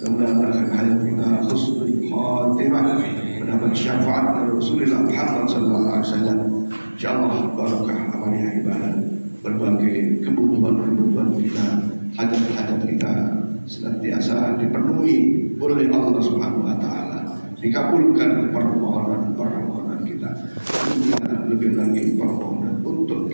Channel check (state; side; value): inverted; both; correlation -1.00